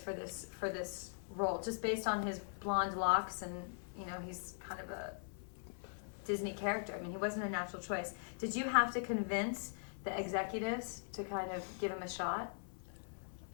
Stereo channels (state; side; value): silent; right; 50 dB below the other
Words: this role, just based on his blonde locks, and he's kind of a Disney character. I mean, he wasn't a natural choice. Did you have to convince the executives to kind of give him a shot?